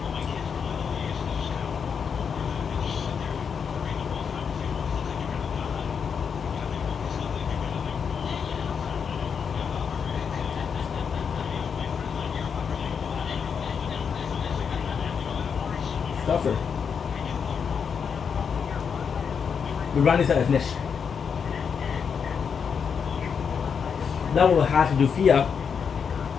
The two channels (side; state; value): right; quieter; 6.6 dB